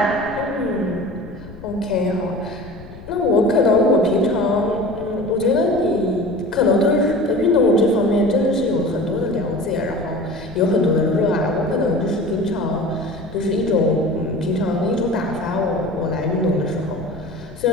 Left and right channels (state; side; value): noise; left; rumble, 17 dB below the sound